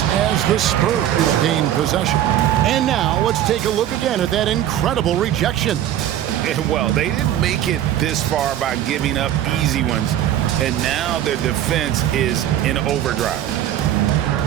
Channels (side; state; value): left; quieter; 11.6 dB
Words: as the Spurs gain possession. And now let's take a look again at that incredible rejection. Well, they didn't make it this far by giving up easy ones, and now their defense is in overdrive.